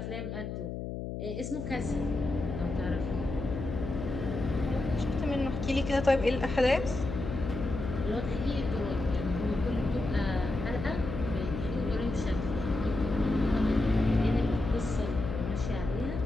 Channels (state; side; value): noise; left; hum, 6 dB below the sound